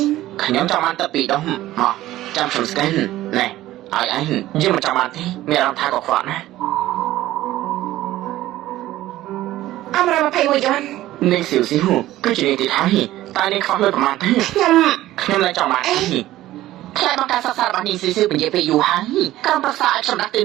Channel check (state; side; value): quieter; left; 15.2 dB